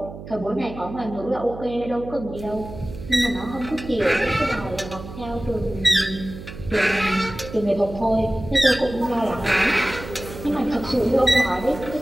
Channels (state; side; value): noise; right; hum, 12 dB below the sound